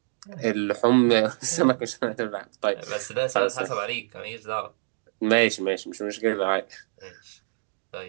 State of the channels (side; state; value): left; silent; digital silence